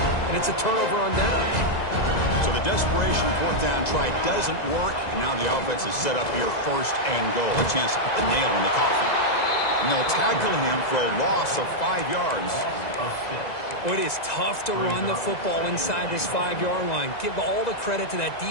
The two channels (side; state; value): right; late; 2.0 ms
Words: and it's a turnover on downs. So the desperation 4th down try doesn't work, and now the offense is set up here 1st and goal. A chance to put the nail in the coffin. And they'll tackle him for a loss of 5 yards. Well, it is tough to run the football inside this 5-yard line. Give all the credit to that